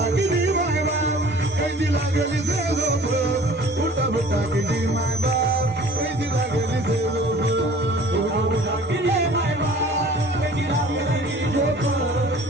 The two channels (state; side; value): normal; both; correlation 0.48